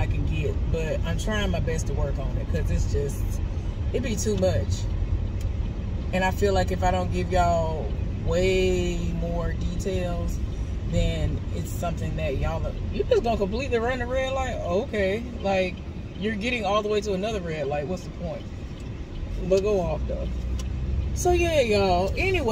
can get, but I'm trying my best to work on it, because it's just, it'd be too much. And I feel like if I don't give y'all way more details, then it's something that you're just gonna completely run the red light. Okay, like, you're getting all the way to another red light. What's the point? But go off though. So yeah, y'all,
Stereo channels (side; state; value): both; identical; correlation 1.00